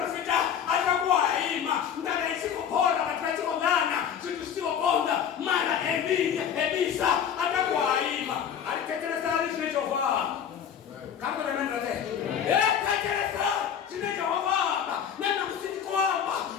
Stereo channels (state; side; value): quieter; right; 8.4 dB